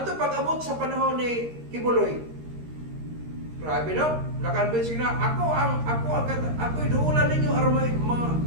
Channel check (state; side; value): late; left; 13 ms